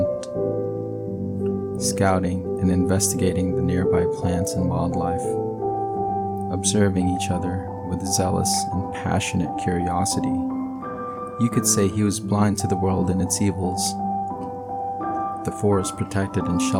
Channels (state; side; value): identical; both; correlation 1.00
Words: scouting and investigating the nearby plants and wildlife, observing each other with zealous and passionate curiosity. You could say he was blind to the world and its evils. The forest protected and